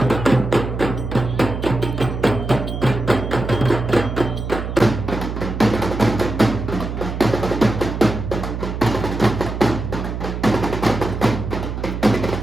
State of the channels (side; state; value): right; noise; hum, 5 dB below the sound